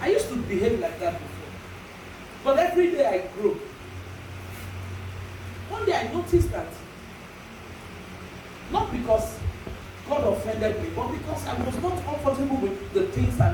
used to behave like that before. But every day I grow. One day I noticed that, not because God offended me, but because I was not comfortable with the things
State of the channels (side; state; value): both; identical; correlation 1.00